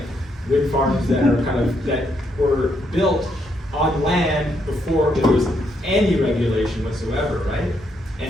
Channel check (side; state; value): both; normal; correlation 0.76